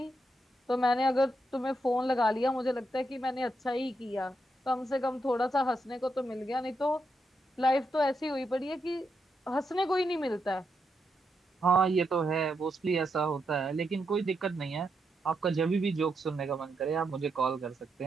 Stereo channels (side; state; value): both; normal; correlation 0.82